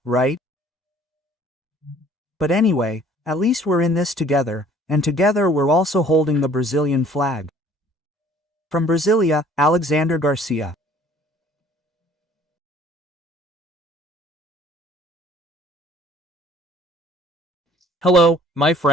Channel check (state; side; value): normal; both; correlation 0.55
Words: right? But anyway, at least we're in this together, and together we're also holding the Brazilian flag. From Brasilia, Alexander Garcia. Hello, my